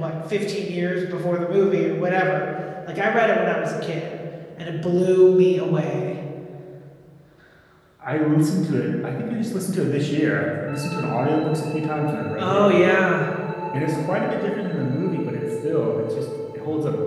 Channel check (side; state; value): both; identical; correlation 1.00